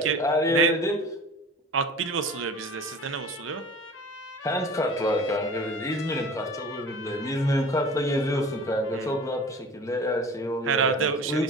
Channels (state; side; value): normal; both; correlation 0.40